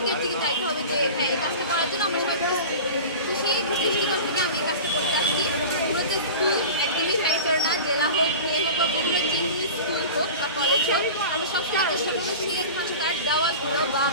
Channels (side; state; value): both; inverted; correlation -0.34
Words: দিকে যাইতে হবে যে হ্যাঁ এই কাজটা করার জন্য আমরা সবাই প্রস্তুত। তো সেই দৃষ্টিকোণ থেকে আমি এই কাজটা করতে আসছি। মূলত স্কুল একদমই ফ্যাক্টর না, জেলা হোক বিয়ে হোক বা বিভিন্ন যে স্কুল হোক বা কলেজ হোক, আমরা সবসময় চেষ্টা করবো সেইখানকার দেওয়ালগুলো বা